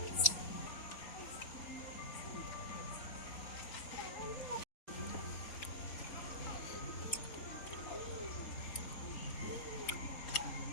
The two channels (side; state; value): right; late; 3.5 ms